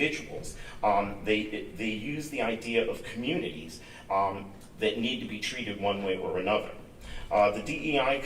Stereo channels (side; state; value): both; identical; correlation 1.00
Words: they use the idea of communities that need to be treated one way or another. The DEI